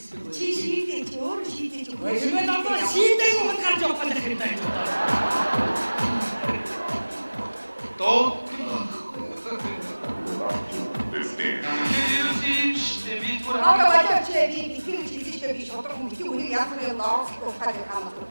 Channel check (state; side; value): inverted; both; correlation -1.00